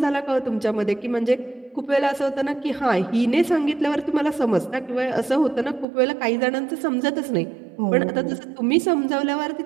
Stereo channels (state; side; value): drops out; left; at 5.9 s